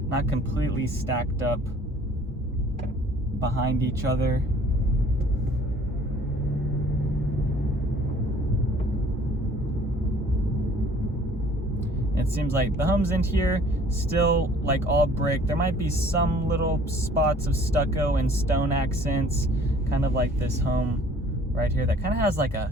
completely stacked up behind each other. It seems like the homes in here still like all brick. There might be some little spots of stucco and stone accents, kind of like this home right here that kind of has like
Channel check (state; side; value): normal; both; correlation 0.54